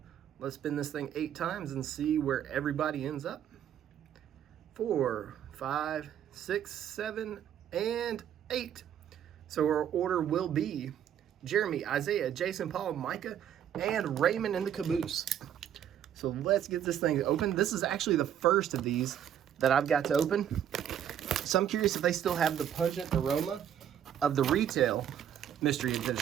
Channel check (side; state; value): left; quieter; 9.8 dB